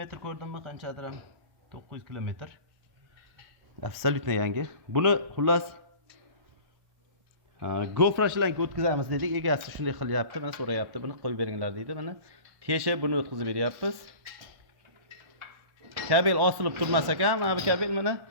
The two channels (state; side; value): late; left; 1.1 ms